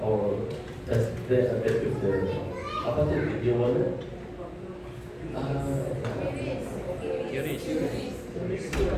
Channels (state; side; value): identical; both; correlation 1.00